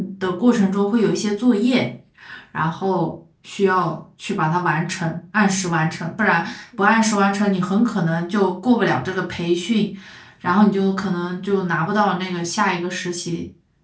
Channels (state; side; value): identical; both; correlation 1.00